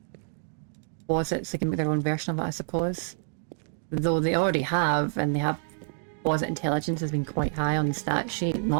posits. They can make their own version of it, I suppose. Though they already have, and they have posit intelligence has been quite high on the stat sheet,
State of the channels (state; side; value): silent; left; digital silence